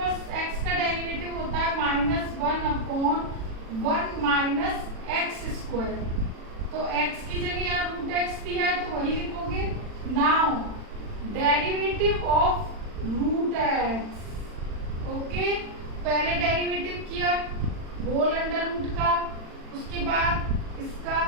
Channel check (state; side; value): late; left; 40 ms